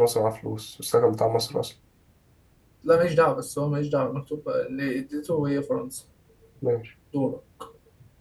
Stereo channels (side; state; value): both; identical; correlation 1.00